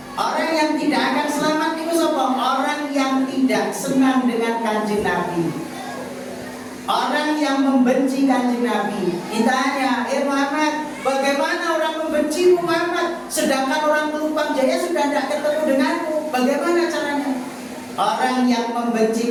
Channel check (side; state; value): both; identical; correlation 1.00